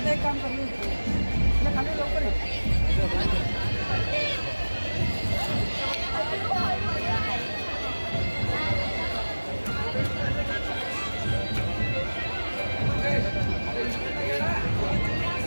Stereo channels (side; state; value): both; inverted; correlation -1.00